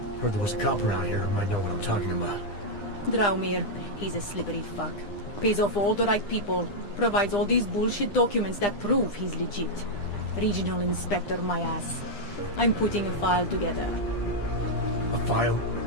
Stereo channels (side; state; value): right; late; 9.9 ms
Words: Heard there was a cop around here who might know what I'm talking about. Draumir, he's a slippery fuck. Pays off all the right people. Provides all these bullshit documents that prove he's legit. Regional Inspector, my ass. I'm putting a file together. A file?